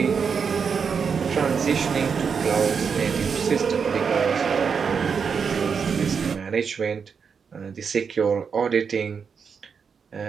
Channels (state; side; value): quieter; left; 6.1 dB